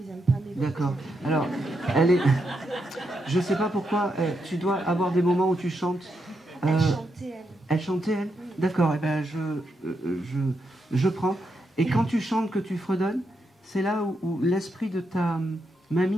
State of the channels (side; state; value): both; normal; correlation 0.82